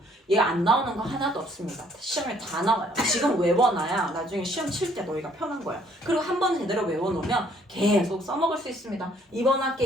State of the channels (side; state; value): both; normal; correlation 0.63